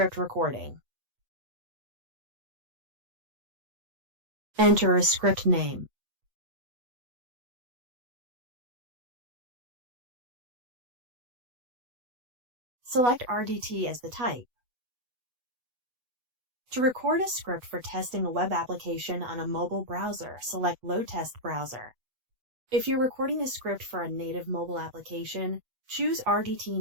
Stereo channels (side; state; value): left; late; 8.1 ms